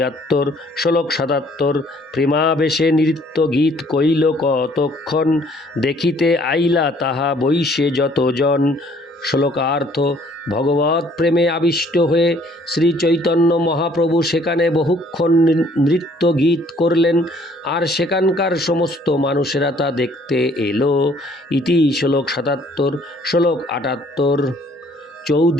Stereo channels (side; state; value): both; normal; correlation 0.60